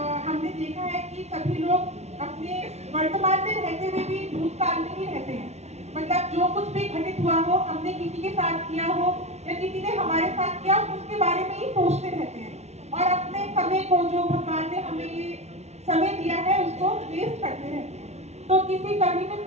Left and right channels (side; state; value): left; late; 0.32 ms